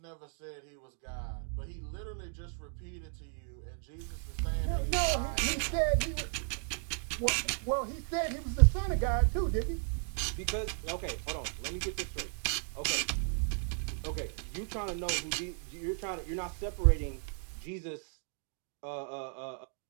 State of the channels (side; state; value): left; silent; 55 dB below the other